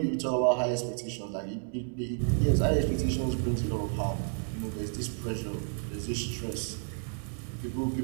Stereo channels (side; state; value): left; silent; 57 dB below the other